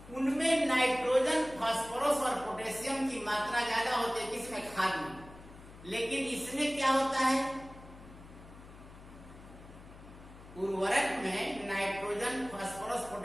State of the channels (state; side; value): noise; left; hum, 18 dB below the sound